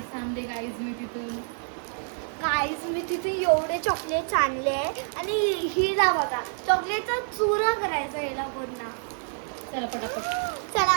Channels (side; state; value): left; silent; 60 dB below the other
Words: आणले गाईज मी तिथून. गाईज मी तिथे एवढे चॉकलेट्स आणले आणि हिला बघा चॉकलेटचा चुरा करायचा हिला पूर्ण. चला पटापट